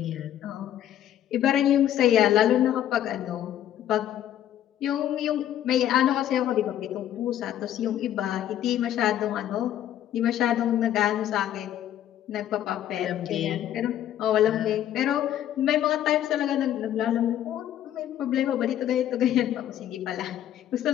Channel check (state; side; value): quieter; right; 11.4 dB